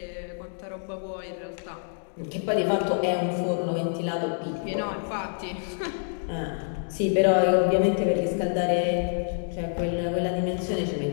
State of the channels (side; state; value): right; silent; digital silence